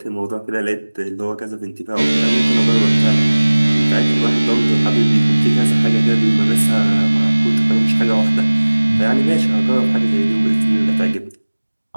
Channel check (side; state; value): both; inverted; correlation -1.00